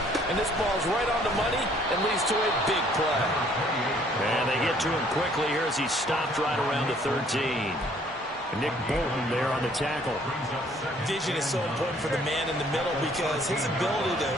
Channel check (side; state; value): both; normal; correlation 0.61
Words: And this ball's right on the money and leads to a big play. And they get to him quickly here as he's stopped right around the 13. Nick Bolton there on the tackle. Vision is so important for the man in the middle because his ability